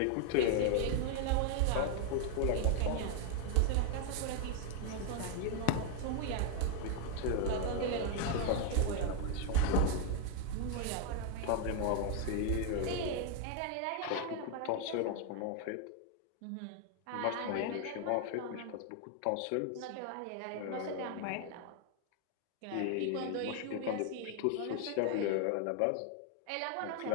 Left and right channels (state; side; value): different; both; correlation 0.00